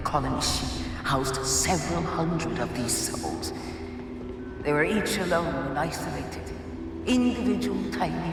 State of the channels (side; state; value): both; identical; correlation 1.00